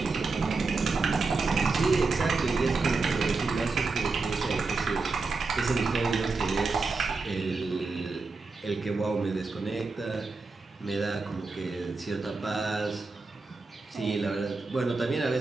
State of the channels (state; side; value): quieter; left; 4.0 dB